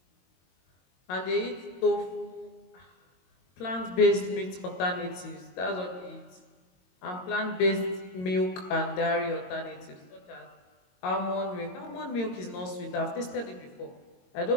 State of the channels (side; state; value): right; late; 22 ms